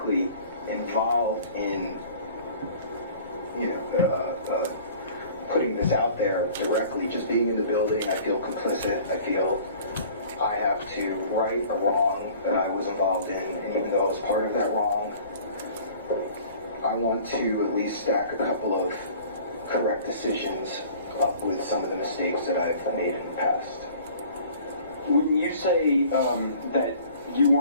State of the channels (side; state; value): both; inverted; correlation -0.48